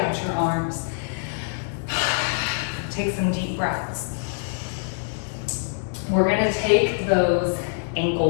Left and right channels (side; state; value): right; silent; digital silence